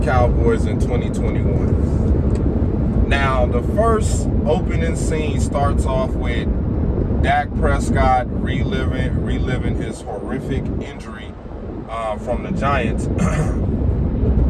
in 2021. Now, the first opening scene starts off with Dak Prescott reliving his horrific injury from the Giants,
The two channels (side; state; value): both; identical; correlation 1.00